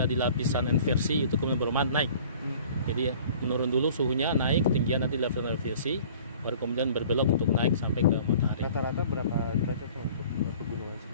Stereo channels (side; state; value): both; inverted; correlation -0.49